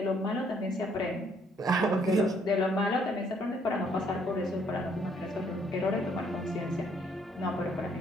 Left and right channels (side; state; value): both; normal; correlation 0.67